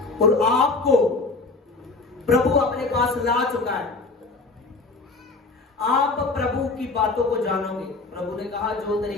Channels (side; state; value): right; quieter; 3.7 dB